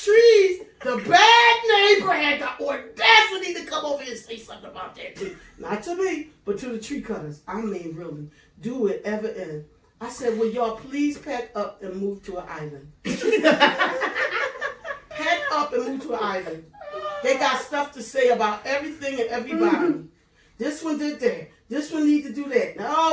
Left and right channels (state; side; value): identical; both; correlation 1.00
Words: trees, the bad neighbor had the audacity to come over here and say something about that too. Not to me, but to the tree cutters. I mean, really. Do it ever end. I said, will y'all please pack up and move to an island? Pack up and move to an island. They got stuff to say about everything and everybody. This one did that. This one need to do that.